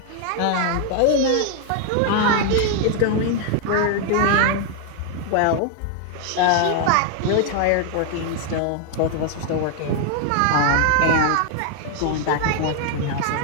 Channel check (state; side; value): different; both; correlation 0.00